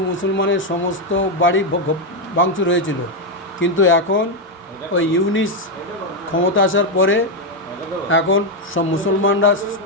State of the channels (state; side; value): normal; both; correlation 0.04